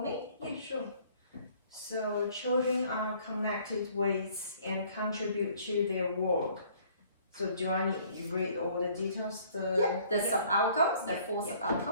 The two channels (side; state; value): both; inverted; correlation -0.58